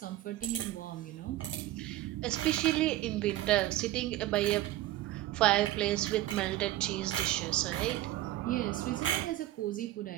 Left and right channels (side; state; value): left; quieter; 15.0 dB